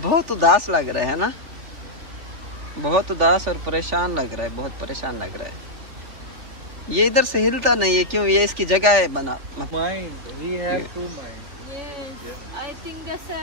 उदास लग रहा है ना, बहुत उदास और परेशान लग रहा है, बहुत परेशान लग रहा है। ये इधर से हिलता नहीं है, क्यों? ये इसकी जगह है बना। Mind, we have to mind. Yes, I think that's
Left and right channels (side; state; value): left; late; 3.4 ms